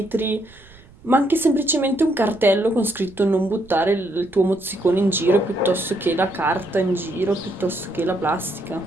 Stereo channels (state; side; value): noise; right; rumble, 25 dB below the sound